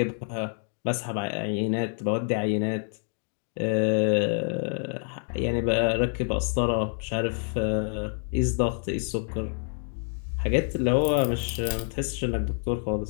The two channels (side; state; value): right; silent; 60 dB below the other